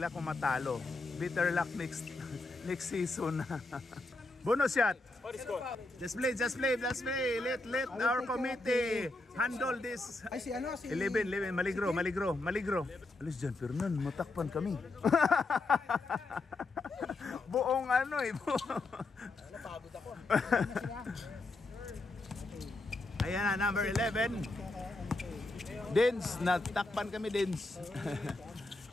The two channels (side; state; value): right; quieter; 3.1 dB